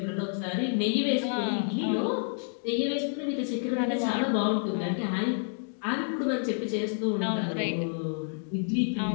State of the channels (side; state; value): right; silent; 59 dB below the other